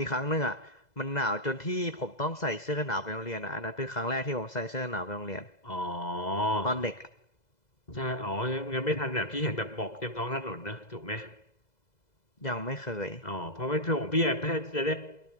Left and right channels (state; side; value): late; right; 2.0 ms